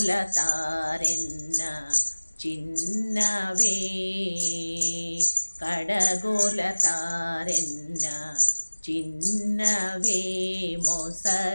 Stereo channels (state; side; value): inverted; both; correlation -1.00